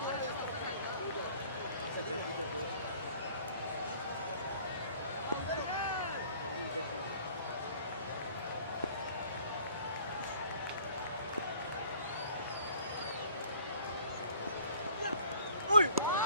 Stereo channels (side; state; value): both; inverted; correlation -0.53